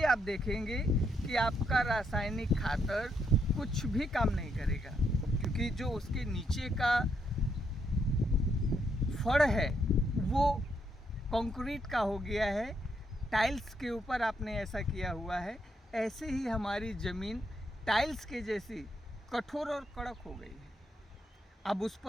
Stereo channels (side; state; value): both; normal; correlation 0.77